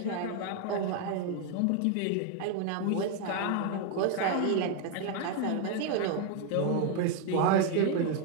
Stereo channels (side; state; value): both; different; correlation 0.01